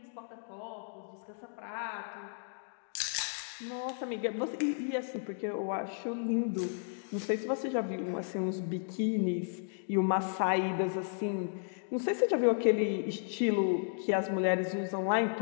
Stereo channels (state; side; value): silent; right; digital silence